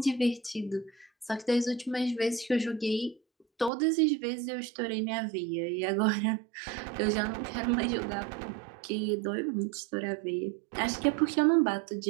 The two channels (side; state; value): left; drops out; at 3.7 s